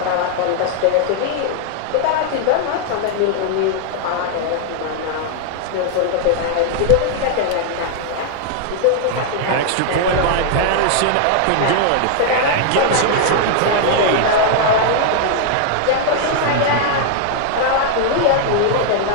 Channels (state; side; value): different; both; correlation 0.00